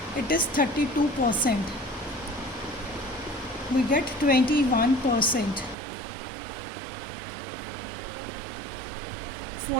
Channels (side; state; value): left; drops out; at 5.8 s